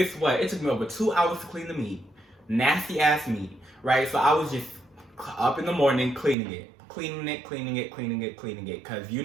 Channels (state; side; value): drops out; left; at 6.4 s